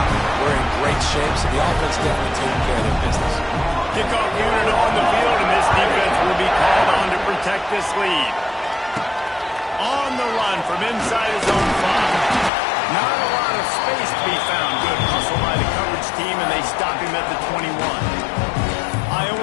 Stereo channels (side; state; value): right; drops out; at 12.5 s